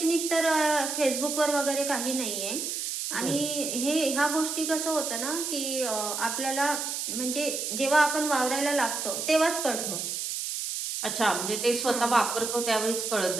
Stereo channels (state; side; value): noise; right; hiss, 3 dB below the sound